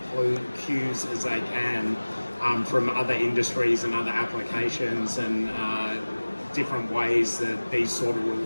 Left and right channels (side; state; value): both; inverted; correlation -1.00